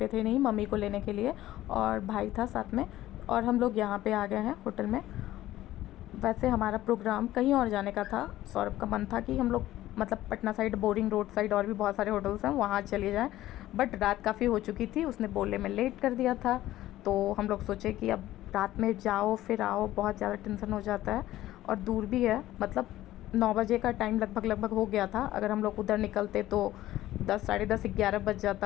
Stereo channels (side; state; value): right; quieter; 14.8 dB